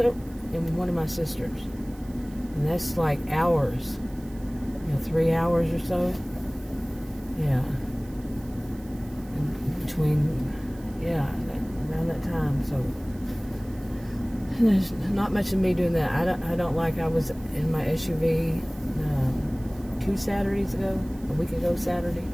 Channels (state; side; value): noise; right; hiss, 24 dB below the sound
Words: and one of my sisters. And that's like hours, 3 hours or so. Yeah. And between, around that time. So there's not much of me doing that. I was in my SUV 2 Saturdays ago, a week ago Saturday,